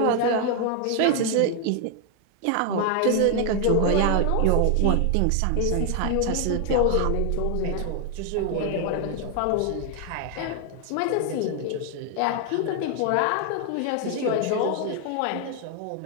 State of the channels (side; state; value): both; different; correlation 0.00